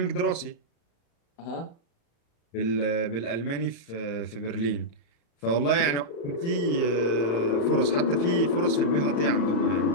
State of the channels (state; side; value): late; right; 35 ms